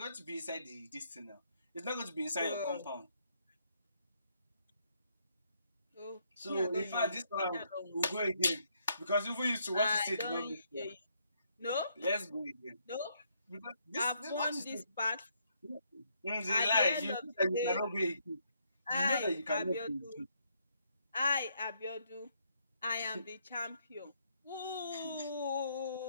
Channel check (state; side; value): inverted; both; correlation -0.73